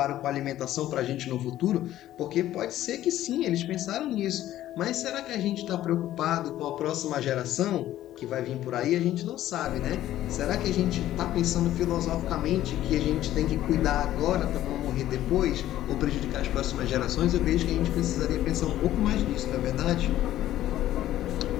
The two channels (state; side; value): quieter; right; 13.4 dB